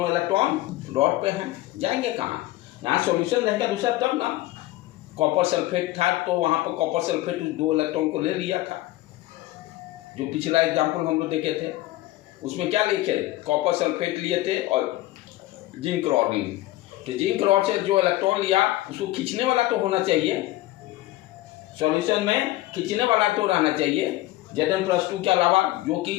इलेक्ट्रॉन रॉड पे हैं, जाएंगे कहाँ? यहाँ सॉल्यूशन रहेगा दूसरा तब ना। कॉपर सल्फेट था तो वहाँ पर कॉपर सल्फेट दो इलेक्ट्रॉन को ले लिया था, जो पिछला एग्जाम्पल हम लोग देखे थे। उसमें क्या लिखे? कॉपर सल्फेट लिए थे और जिंक रॉड ली। तो जिंक रॉड से जो इलेक्ट्रॉन लिया उसको खींचने वाला तो होना चाहिए, सॉल्यूशन में खींचने वाला तो रहना चाहिए Zn+2 के अलावा, जो कि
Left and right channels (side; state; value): right; quieter; 16.8 dB